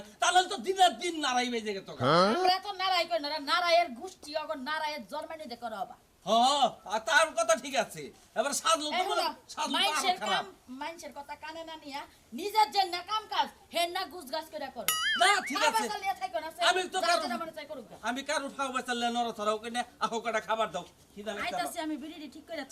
তাহলে তো দিনের দিন নারাই বেজে গেত আমরা তো নারাই কই না নারায়ের গোষ্ঠী অগর নারায়ের জন্মানি দেখো রবা আর তার কথা ঠিক আছে এবার সাজলু তো বলে সাজলু মাইনসের তো কাম খারাপ মাইনসের কথা কানে না নিয়া নিজের যে না কাম কাজ হেন না গুজগাছ করে করো না ঠিক আছে আমি তো আমি কারো ফাও বাঁচালে নড়া ছড়াও কিনে আহো কটা খাবার দাও কি জানি আইতাছি আমি বিড়ি ঠিক করে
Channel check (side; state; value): both; identical; correlation 1.00